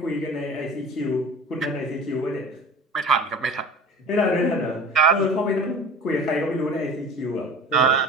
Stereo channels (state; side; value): normal; both; correlation 0.40